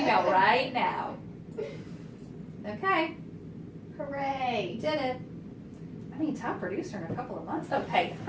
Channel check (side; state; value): both; identical; correlation 1.00